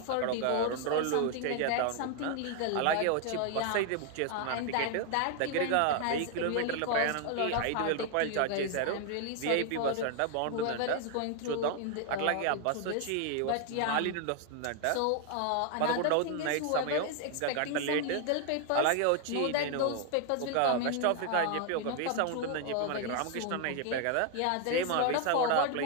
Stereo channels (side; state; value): both; different; correlation 0.01